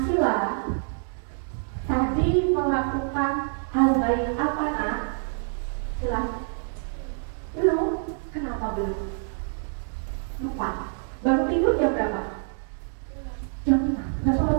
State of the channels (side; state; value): left; silent; 61 dB below the other